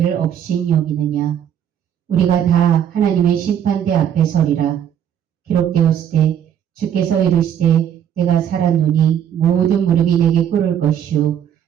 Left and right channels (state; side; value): quieter; left; 9.4 dB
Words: 업신 여기느냐? 우리가 다 하나님의 심판대 앞에 서리라. 기록되었을 때 주께서 이르시되 내가 살았노니 모든 무릎이 내게 꿇을 것이요